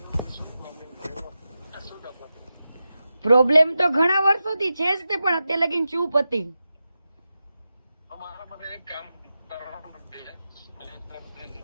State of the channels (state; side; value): inverted; both; correlation -0.92